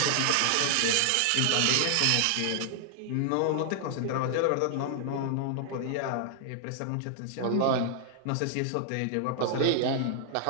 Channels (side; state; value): both; different; correlation -0.01